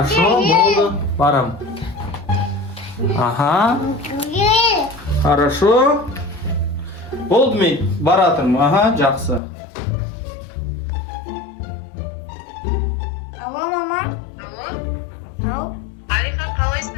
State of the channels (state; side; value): drops out; right; at 9.4 s